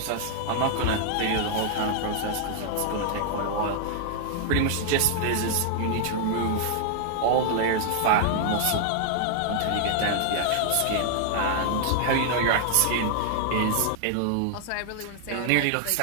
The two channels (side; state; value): both; different; correlation -0.01